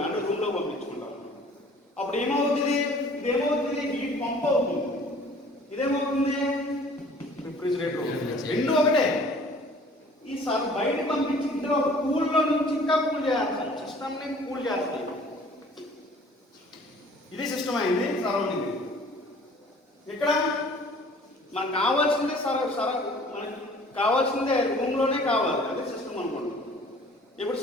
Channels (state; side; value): normal; both; correlation 0.51